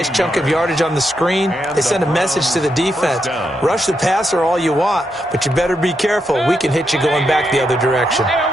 chunk of yardage on the screen, they sent a message to the defense. Rush the passer all you want, but you better be careful. We can hit you going back the other direction.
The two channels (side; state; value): both; normal; correlation 0.82